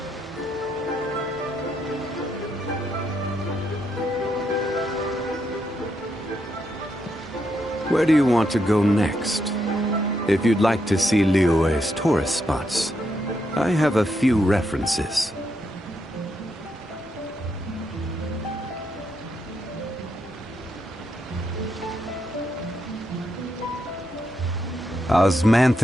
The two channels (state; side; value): normal; both; correlation 0.80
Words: Where do you want to go next? If you'd like to see Liyue's tourist spots, I have a few references.